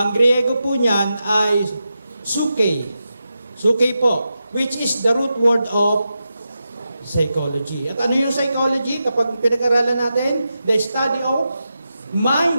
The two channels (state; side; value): inverted; both; correlation -0.89